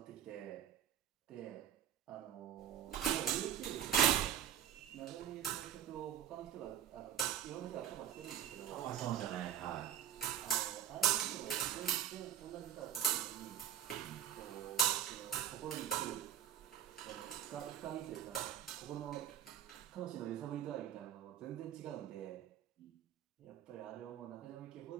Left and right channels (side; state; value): left; quieter; 10.0 dB